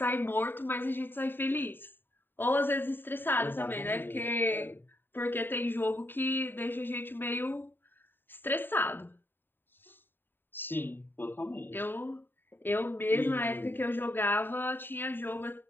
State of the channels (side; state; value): right; late; 0.095 ms